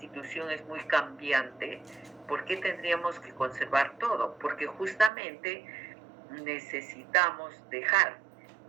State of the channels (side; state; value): left; drops out; at 5.1 s